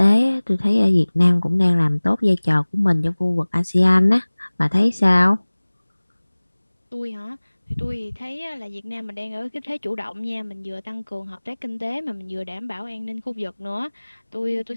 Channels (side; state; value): both; inverted; correlation -1.00